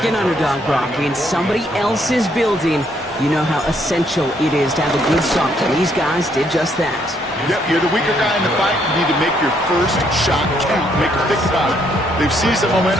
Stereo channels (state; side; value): normal; both; correlation 0.71